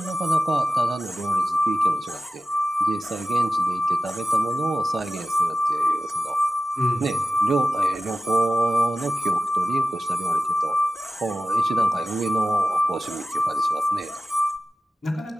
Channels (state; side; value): normal; both; correlation 0.94